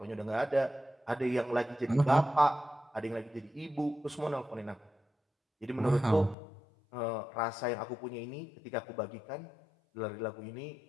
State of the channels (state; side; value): drops out; right; at 6.4 s